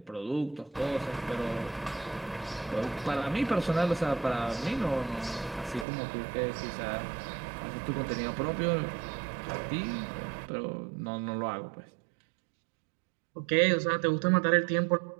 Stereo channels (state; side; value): drops out; left; at 5.9 s